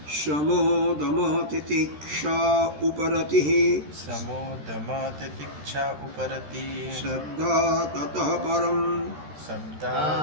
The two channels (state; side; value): late; left; 13 ms